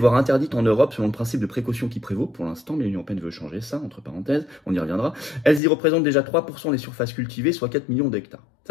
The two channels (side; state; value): right; drops out; at 5.6 s